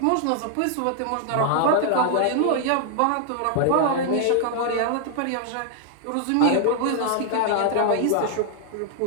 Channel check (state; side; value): different; both; correlation 0.00